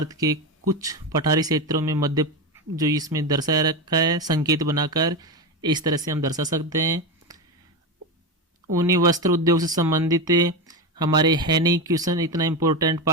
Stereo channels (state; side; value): normal; both; correlation 0.16